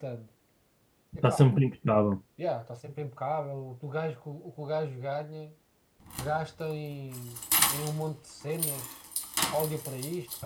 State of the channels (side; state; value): both; identical; correlation 1.00